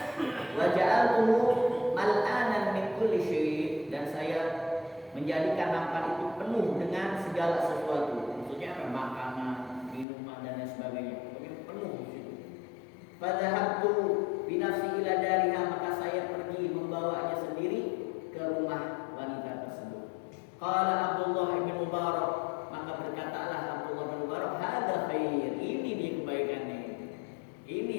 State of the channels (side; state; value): right; drops out; at 10.1 s